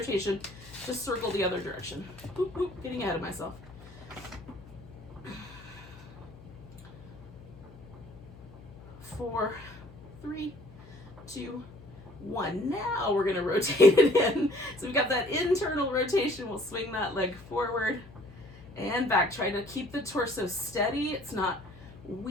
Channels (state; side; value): noise; left; hum, 19 dB below the sound